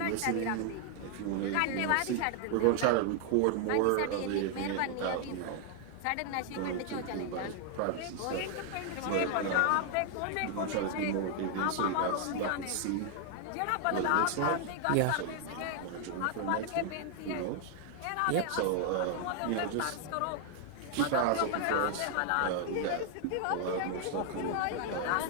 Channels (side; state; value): both; different; correlation 0.00